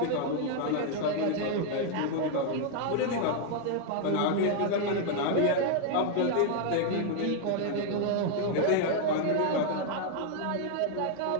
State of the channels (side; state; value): both; different; correlation 0.00